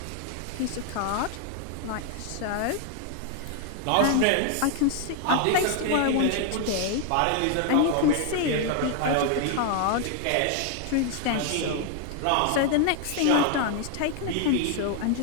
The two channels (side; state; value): both; different; correlation 0.00